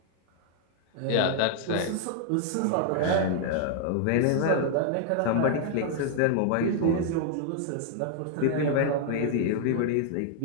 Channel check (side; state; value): both; different; correlation 0.00